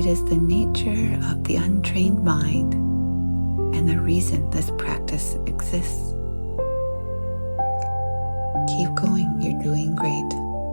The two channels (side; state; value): both; inverted; correlation -1.00